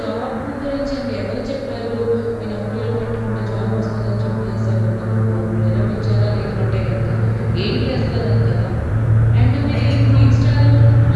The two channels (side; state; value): both; identical; correlation 1.00